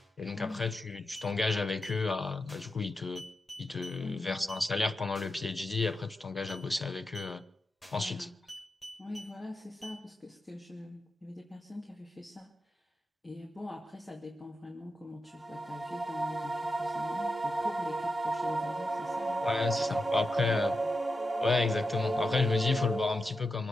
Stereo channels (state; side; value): normal; both; correlation 0.89